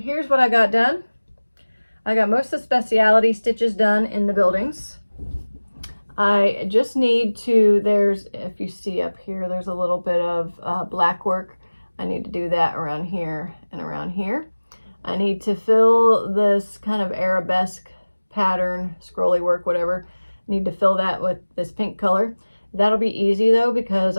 what I got done. I got most of the specialty stitches done in the buildings. I just need to, if you see up here, there's a little bit of black work. I need to do that around here and around here. I need to fill this kind of arabesque pattern, scrolly work, whatever. Need to fill that with this pink color. That'll be easy though, because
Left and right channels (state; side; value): inverted; both; correlation -1.00